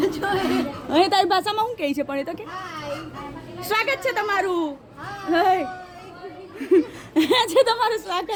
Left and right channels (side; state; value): both; identical; correlation 1.00